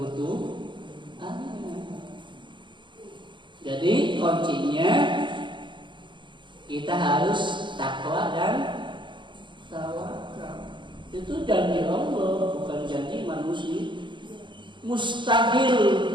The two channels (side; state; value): left; late; 0.23 ms